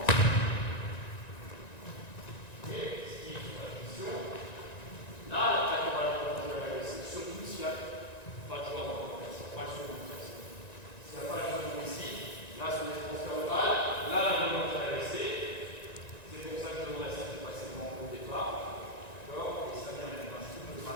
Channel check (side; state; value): right; late; 1.9 ms